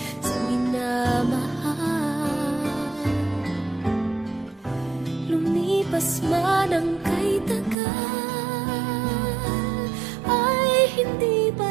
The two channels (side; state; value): left; drops out; at 7.8 s